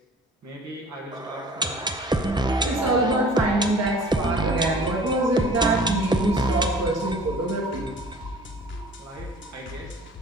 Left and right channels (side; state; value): both; normal; correlation 0.48